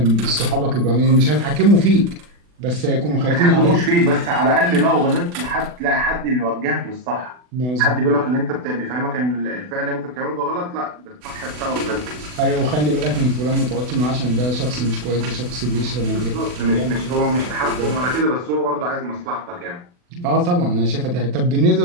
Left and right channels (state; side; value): late; left; 40 ms